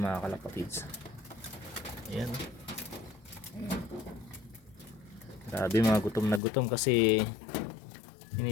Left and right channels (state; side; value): drops out; right; at 6.4 s